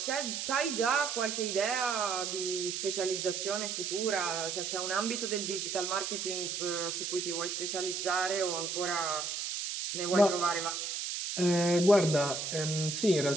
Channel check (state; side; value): noise; right; hiss, 3 dB below the sound